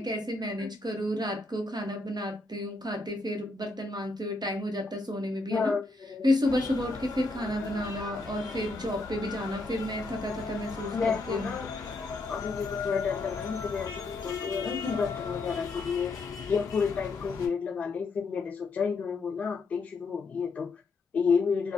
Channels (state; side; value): quieter; right; 3.3 dB